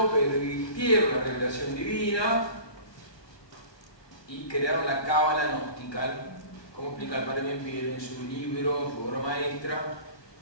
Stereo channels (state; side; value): late; right; 1.2 ms